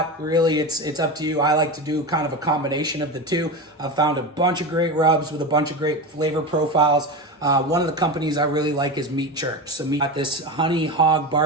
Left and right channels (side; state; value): both; normal; correlation 0.22